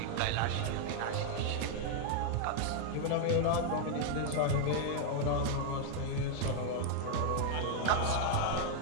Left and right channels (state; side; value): different; both; correlation 0.00